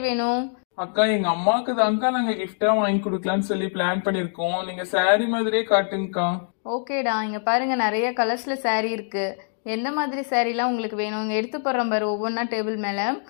வேணும்? அக்கா எங்க அம்மாவுக்கு தான்க்கா நாங்க கிஃப்டா வாங்கி கொடுக்கலாம்னு சொல்லி பிளான் பண்ணிருக்கோம். நீங்க saree மாதிரியே காட்டுங்கக்கா. ஓகேடா, இங்கே பாருங்கள், நிறைய கலர்ஸில் saree இருக்குது. எந்த மாதிரி சாரீலாம் உங்களுக்கு வேணும்? இங்கே எடுத்து போடுறோம் பாரு ஒவ்வொன்றா டேபிள் மேலே.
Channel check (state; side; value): silent; right; 63 dB below the other